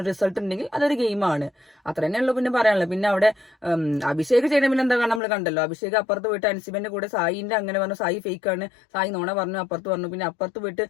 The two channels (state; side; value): drops out; right; at 5.2 s